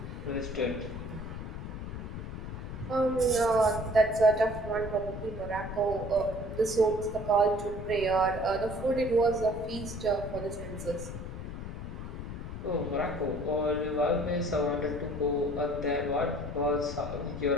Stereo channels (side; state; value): left; noise; rumble, 8 dB below the sound